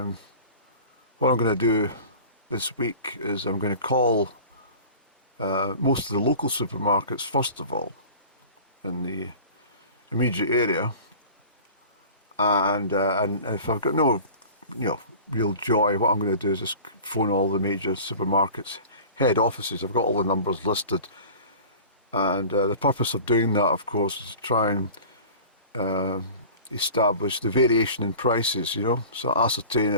I'm going to do this week is I'm going to call most of the local supermarkets first of all in the immediate area, and if I've got no real joy, what I'm going to do is just phone all the major supermarkets head offices. I've got all the numbers listed, and the purpose of doing that, of course, is to try and establish the variation in prices, so ascertain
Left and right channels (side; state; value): both; inverted; correlation -0.41